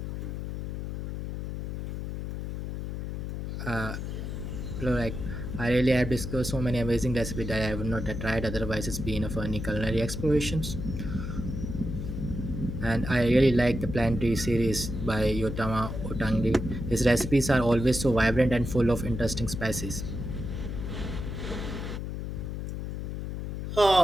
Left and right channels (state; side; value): noise; left; hum, 4 dB below the sound